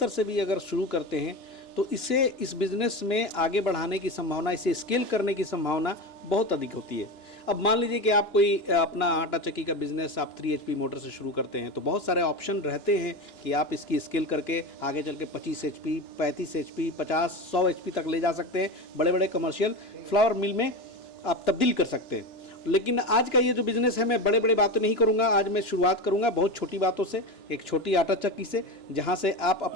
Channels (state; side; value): late; right; 2.9 ms